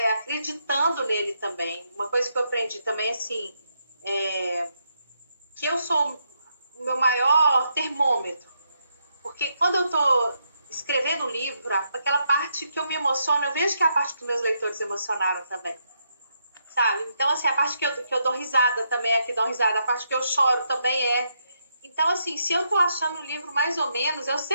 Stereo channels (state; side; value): inverted; both; correlation -0.79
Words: acreditando nele também. Uma coisa que eu aprendi também, assim, que eu sou o meu maior termômetro. Porque quando eu estou escrevendo um livro, aquela parte que eu me emociono, eu vejo que é a parte que os meus leitores emocionaram também. Sabe? Então, assim, a parte que eu dou risada também é que dão risada, a parte que eu choro também é. Então, assim, se eu tô achando o livro mais ou menos, eu